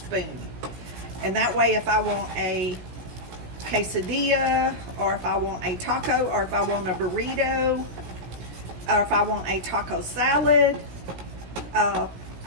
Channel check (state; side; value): late; left; 17 ms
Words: And that way, if I want a quesadilla, or if I want a taco, or if I want a burrito, or if I want a taco salad, I